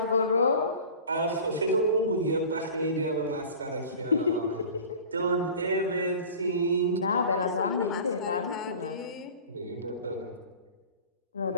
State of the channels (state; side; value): inverted; both; correlation -0.40